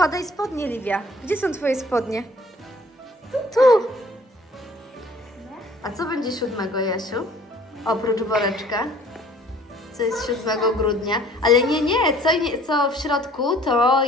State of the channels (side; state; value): both; normal; correlation 0.54